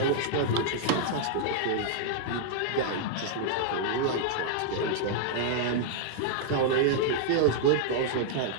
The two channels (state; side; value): different; both; correlation -0.01